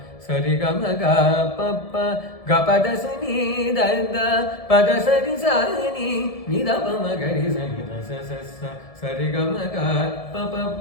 ಸರಿ ಗಮ ಗ ಪ ಪ ಗ ಪದ ಸ ನಿ ದ ದ ಪದ ಸ ನಿ ಸ ನಿ ದ ಬ ಮ ಗ ರಿ ಸ ನಿ ದ ಸ ಸ ಸ ಸರಿ ಗಮ ಗ ಪ ಪ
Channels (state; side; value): late; right; 1.7 ms